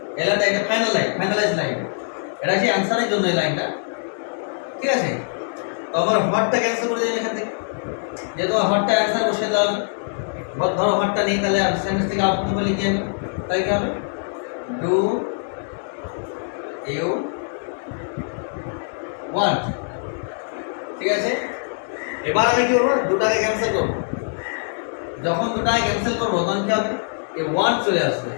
এলাকা এটা ফাইনাল লাইন, ফাইনালাইজ লাইন, এটা হচ্ছে অ্যান্সারের জন্য এই লাইনটা। ঠিক আছে? তো আমার হোয়াটটা ক্যান্সেল করে দেবেন এখান থেকে, যেহেতু হোয়াটটা অ্যান্সার বসে দেওয়া হবে। ধরো হোয়াটটা নেই, তাহলে সেন্টেন্স থেকে আউটপুট বলে লিখে যাবে, তাই কি হবে? Do you want. ঠিক আছে? এবার আমি কি করবো? দুটাকে ক্যান্সেল করবো। যখন দুটাকে ক্যান্সেল করবো তখন কি হবে? এই ওয়ান্ট চলে আসবে,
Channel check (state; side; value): silent; right; 64 dB below the other